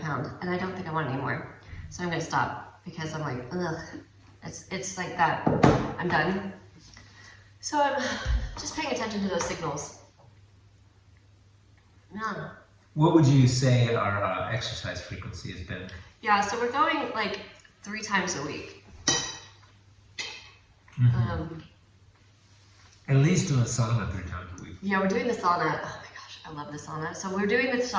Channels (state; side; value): identical; both; correlation 1.00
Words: pound, and I don't think I want it anymore. So I'm gonna stop because I'm like, ugh. It's like that. I'm done. So I'm just paying attention to those signals. Yeah. What would you say our exercise frequency has been? Yeah, so we're going like 3 times a week. At least doing sauna 3 times a week. Yeah, we're doing the sauna. Oh my gosh, I love the sauna. So we're doing the